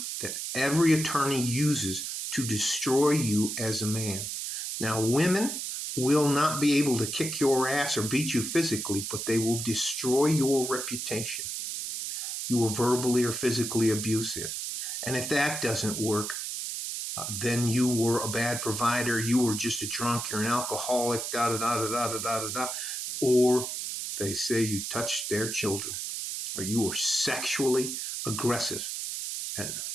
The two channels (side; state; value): right; noise; hiss, 4 dB below the sound